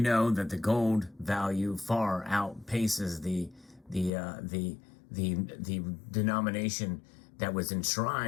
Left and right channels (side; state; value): right; drops out; at 4.1 s